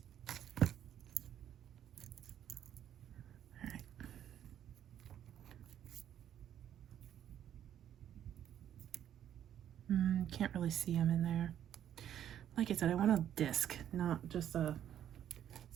Can't really see them in there. Like I said, I want a disc, not just a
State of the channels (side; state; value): left; quieter; 10.4 dB